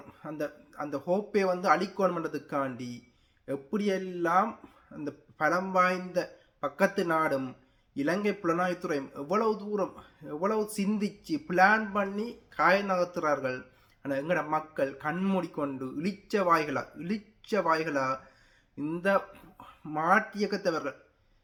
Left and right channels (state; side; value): identical; both; correlation 1.00